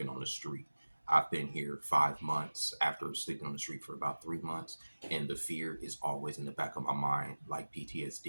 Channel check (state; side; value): inverted; both; correlation -1.00